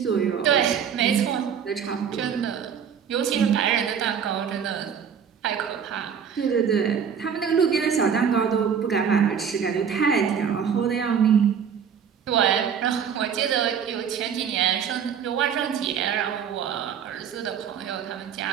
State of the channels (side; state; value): left; quieter; 7.5 dB